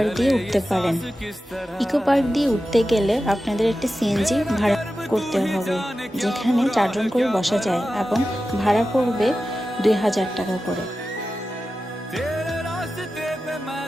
দিয়ে উঠতে পারেন। ইকো পার্ক দিয়ে উঠতে গেলে আপনাদের একটি সিএনজি ভাড়া করতে হবে, যেখানে 4 জন করে বসা যায় এবং ভাড়া পড়বে 2000 টাকা করে।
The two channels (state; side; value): normal; both; correlation 0.93